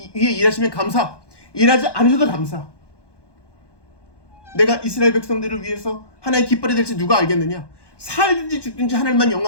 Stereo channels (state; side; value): late; right; 1.2 ms